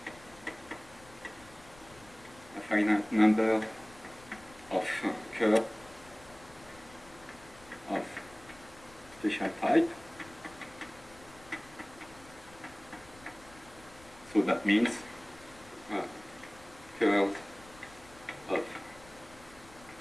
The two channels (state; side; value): noise; left; rumble, 22 dB below the sound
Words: number of curves of special type. So that means curves of